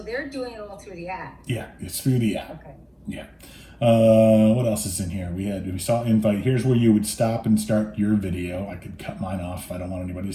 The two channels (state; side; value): identical; both; correlation 1.00